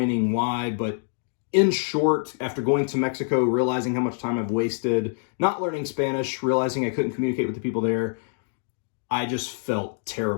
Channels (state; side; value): silent; right; 59 dB below the other